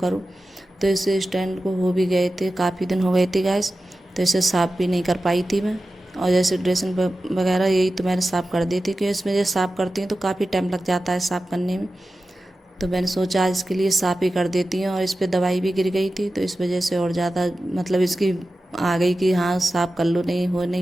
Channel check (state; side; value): normal; both; correlation 0.94